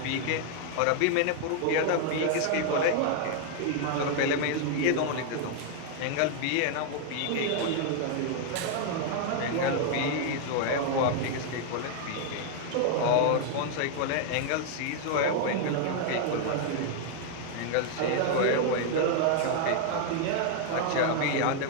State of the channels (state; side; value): different; both; correlation 0.00